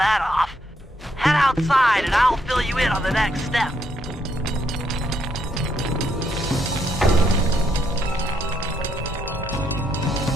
off. Head outside and I'll fill you in on the next step.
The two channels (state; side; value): normal; both; correlation 0.75